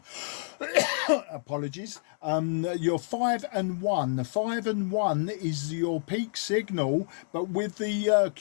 Apologies. You're 5 and 1. 5 and 1 is your peak signal, but with the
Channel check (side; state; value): right; silent; 59 dB below the other